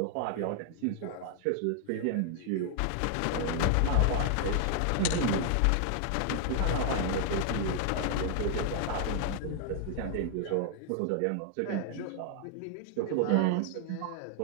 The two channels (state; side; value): different; both; correlation 0.00